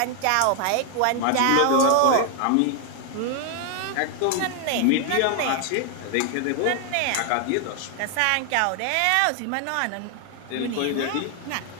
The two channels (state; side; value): different; both; correlation 0.00